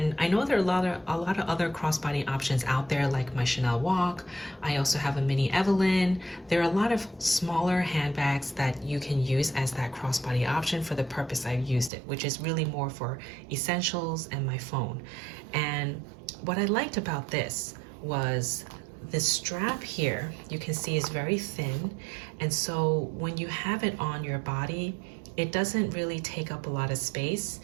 I know there are a lot of other crossbody options out there, like my Chanel Walk. I also have a mini Evelyn. There are a lot of smaller handbags that you can use as that crossbody option for the purpose I've used it, which is really more for essentials and my phone. And what I liked about this was the strap here, you can see, is very thin. And so when you have it on your body, it doesn't really take up a lot of space,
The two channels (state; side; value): drops out; left; at 11.9 s